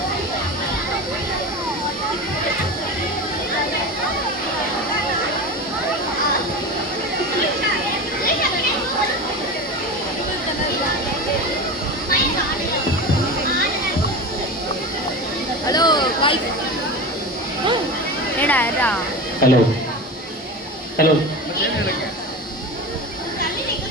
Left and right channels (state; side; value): normal; both; correlation 0.27